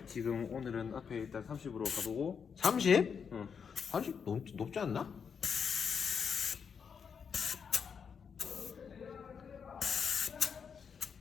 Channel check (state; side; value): quieter; right; 6.6 dB